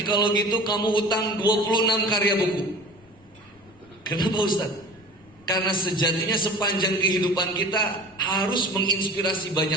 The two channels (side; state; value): left; noise; rumble, 29 dB below the sound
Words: kalau gitu kamu utang 26 karya buku. Kenapa Ustaz? Karena sejatinya sepanjang kehidupan kita harus menginspirasi